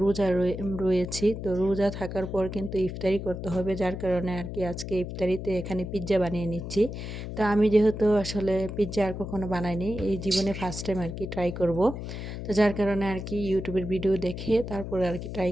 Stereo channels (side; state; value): left; noise; hum, 7 dB below the sound